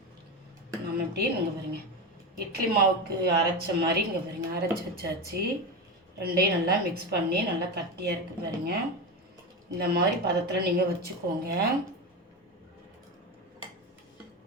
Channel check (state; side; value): normal; both; correlation 0.19